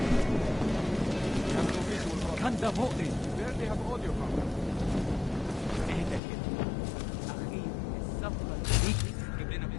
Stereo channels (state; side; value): drops out; right; at 6.2 s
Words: كان ده مؤذي. Barely have audio from them. اهدى كده. أخي الصفقة دي تجيب لنا